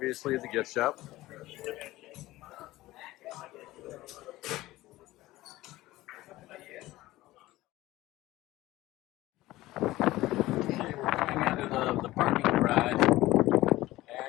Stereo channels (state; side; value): quieter; right; 17.3 dB